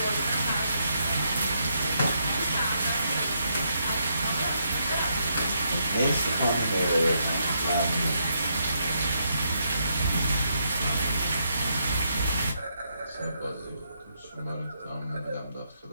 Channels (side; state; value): both; inverted; correlation -0.77